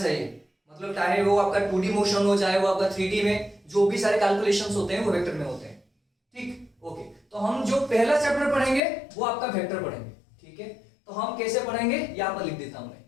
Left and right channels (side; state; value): right; drops out; at 8.8 s